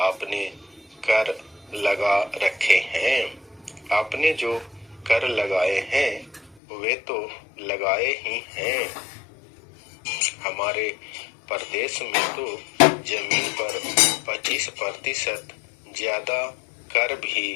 आपने कर लगा रखे हैं, आपने जो कर लगाए हैं वे तो लगाए ही हैं। हमारे प्रदेश में तो जमीन पर 25% ज्यादा कर भी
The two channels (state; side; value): drops out; right; at 6.6 s